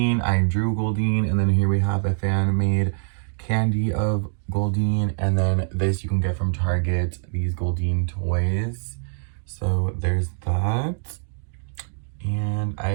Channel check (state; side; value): silent; left; 56 dB below the other